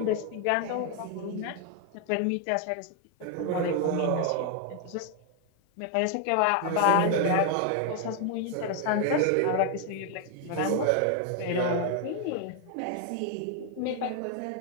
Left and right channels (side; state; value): both; different; correlation 0.00